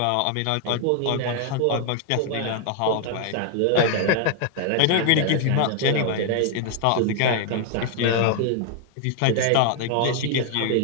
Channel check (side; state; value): both; different; correlation 0.00